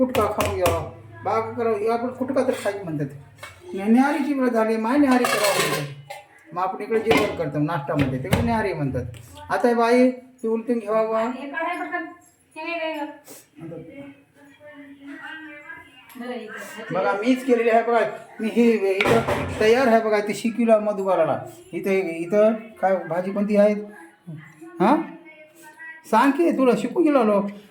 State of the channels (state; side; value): identical; both; correlation 1.00